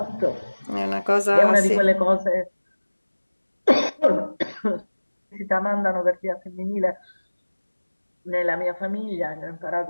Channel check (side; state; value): both; inverted; correlation -1.00